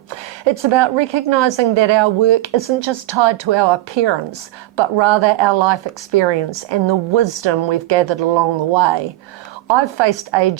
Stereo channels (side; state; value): left; quieter; 16.4 dB